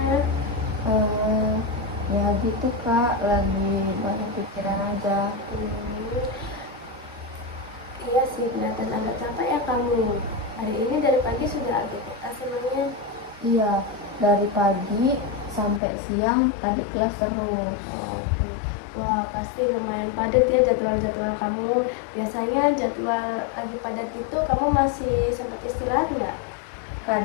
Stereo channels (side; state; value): right; drops out; at 15.8 s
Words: eh ya gitu kak, lagi banyak pikiran aja. Hmm, iya sih, kelihatan agak capek ya kamu. Hari ini dari pagi sudah aktivitas emangnya? Iya, dari pagi sampai siang tadi kelas terus. Oh, oke. Wah, pasti lumayan padat ya jadwal-jadwal kamu. Biasanya jadwal lagi padat itu kamu masih sempat istirahat nggak?